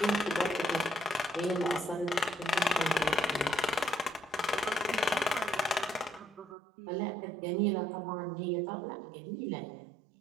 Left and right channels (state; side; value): drops out; left; at 6.6 s